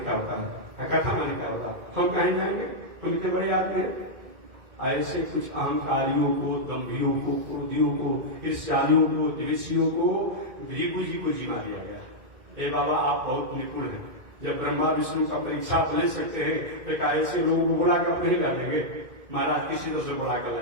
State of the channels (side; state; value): left; late; 2.1 ms